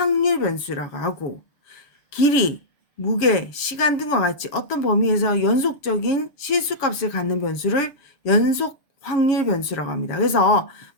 변수라고 하고, 길이, 무게, 시간 등과 같이 어떤 범위에서 연속적인 실수값을 갖는 변수를 연속 확률 변수라고 합니다. 그래서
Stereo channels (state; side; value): late; right; 6.9 ms